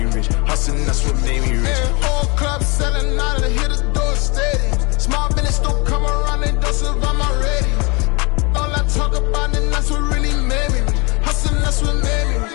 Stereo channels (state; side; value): quieter; right; 28.1 dB